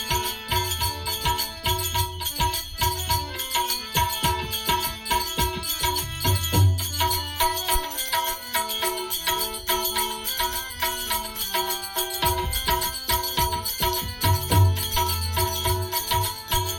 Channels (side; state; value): both; identical; correlation 1.00